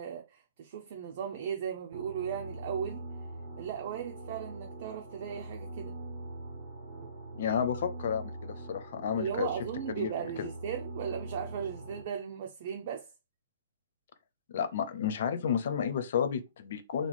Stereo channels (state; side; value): inverted; both; correlation -0.52